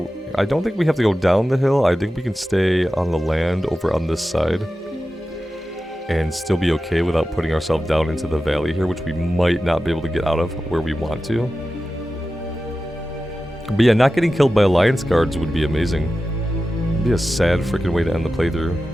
I don't think we have to go down the hill. I think we can stay on the land over on this side and still be okay without putting ourselves down into the valley here, which we might not be able to get out of where we want to. But yeah, not getting killed by Alliance guards would be amazing. It'd be a sad freaking way to end the playthrough.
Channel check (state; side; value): normal; both; correlation 0.93